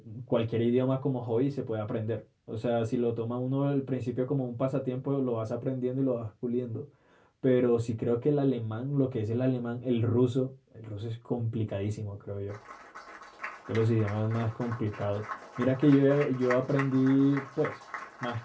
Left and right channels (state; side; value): identical; both; correlation 1.00